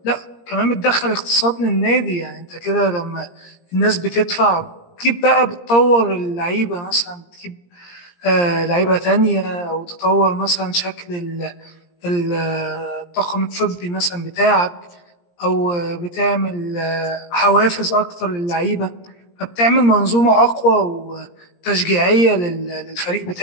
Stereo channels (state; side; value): late; right; 17 ms